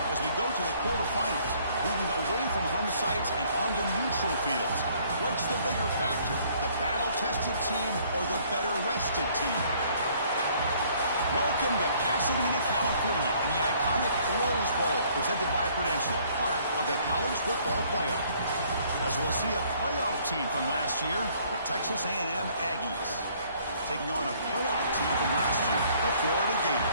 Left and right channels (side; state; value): both; inverted; correlation -0.61